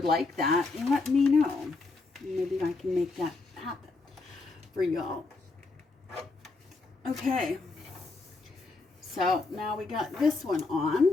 like that, let me know. Maybe I can make that happen for y'all. Okay. So now we got this one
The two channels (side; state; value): right; quieter; 3.7 dB